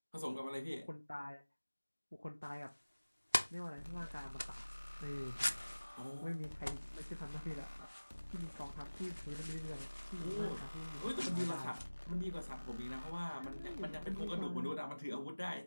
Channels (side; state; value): both; inverted; correlation -1.00